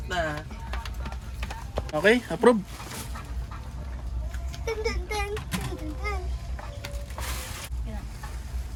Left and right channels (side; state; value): both; identical; correlation 1.00